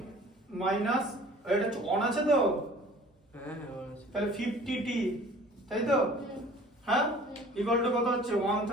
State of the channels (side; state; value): both; normal; correlation 0.48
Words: মাইনাস এটা অন আছে তো হ্যাঁ হ্যাঁ অন আছে তাহলে 50 টি তাই তো হ্যাঁ ইকুয়াল টু কত হচ্ছে